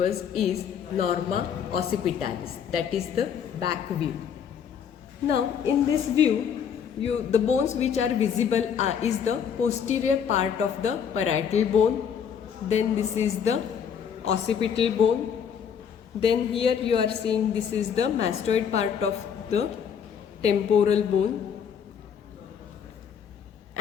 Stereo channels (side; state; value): right; quieter; 7.7 dB